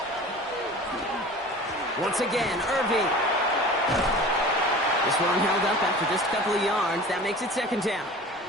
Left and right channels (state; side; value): normal; both; correlation 0.39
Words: Once again, Irving. This one held up after just a couple of yards. That makes it 2nd down.